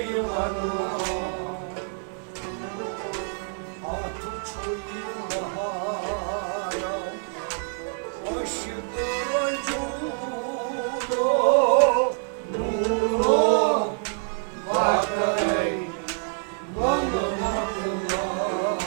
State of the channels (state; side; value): silent; left; 61 dB below the other